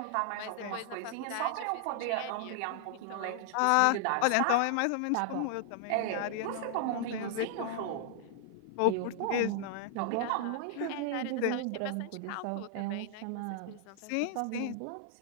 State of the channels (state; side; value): different; both; correlation -0.01